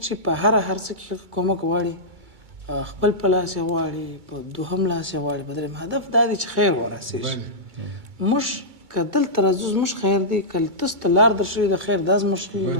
چې په هر څه کې کومک غواړي خپل په لاس یې غواړي، په دوهم لاس یې غواړي، په درېیم هدف دا دی چې خیر ورسېږي. موږ که دلته راځو زموږ خیر دی، که تاسو ته لار در شوي د خیر دا زموږ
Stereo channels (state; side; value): late; left; 2.2 ms